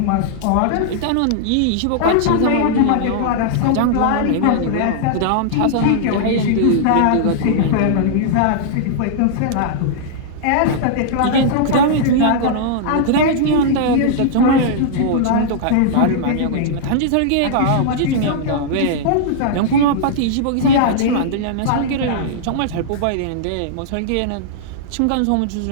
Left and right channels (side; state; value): both; different; correlation -0.01